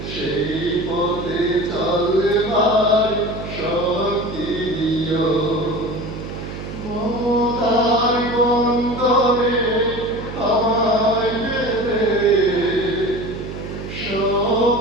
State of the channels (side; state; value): right; noise; hum, 9 dB below the sound